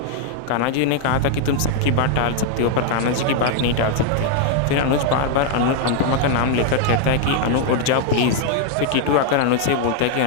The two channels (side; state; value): both; different; correlation 0.00